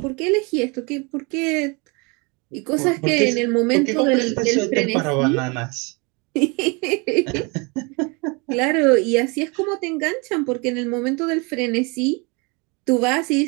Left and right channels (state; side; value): quieter; left; 29.7 dB